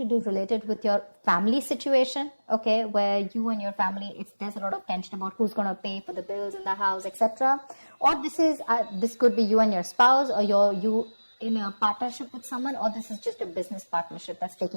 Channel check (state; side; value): inverted; both; correlation -1.00